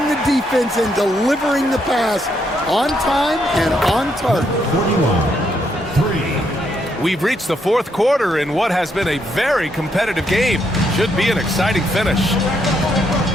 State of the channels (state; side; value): normal; both; correlation 0.76